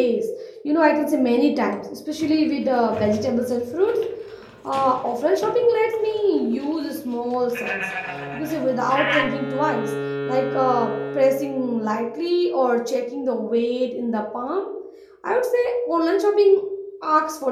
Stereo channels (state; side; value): identical; both; correlation 1.00